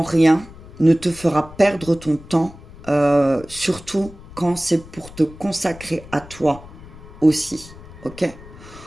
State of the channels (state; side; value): noise; left; rumble, 18 dB below the sound